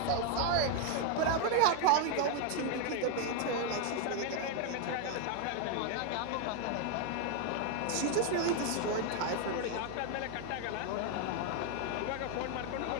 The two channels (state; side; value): different; both; correlation 0.00